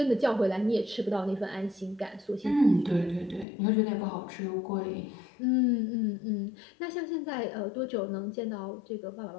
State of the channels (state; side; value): drops out; right; at 3.5 s